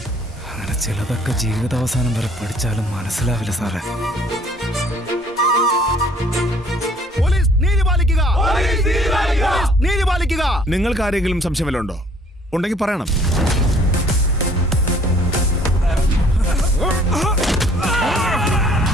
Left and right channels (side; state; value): both; normal; correlation 0.58